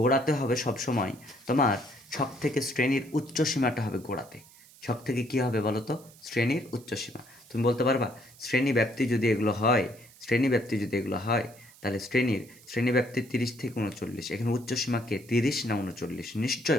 হবে সবসময় তোমার ছক থেকে শ্রেণীর উচ্চ সীমাটা হবে গোড়াতে। ছক থেকে কী হবে বলো তো? শ্রেণীর উচ্চ সীমা। তুমি বলতে পারবা শ্রেণী ব্যাপ্তি যদি এগুলো হয়, শ্রেণী ব্যাপ্তি যদি এগুলো হয়, তাহলে শ্রেণী ব্যাপ্তি 30 থেকে 39। এখানে উচ্চ সীমা কে? 30 না 39? নিশ্চয়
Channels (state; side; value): noise; right; hiss, 24 dB below the sound